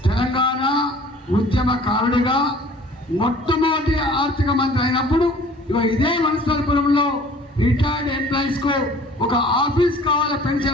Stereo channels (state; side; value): normal; both; correlation 0.50